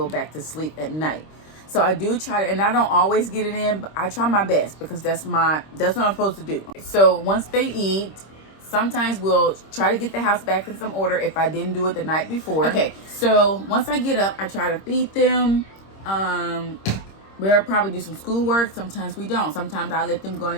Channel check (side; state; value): right; late; 26 ms